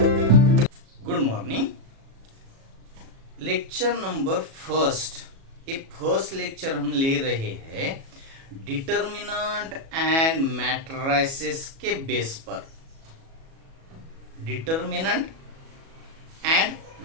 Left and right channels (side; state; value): left; late; 37 ms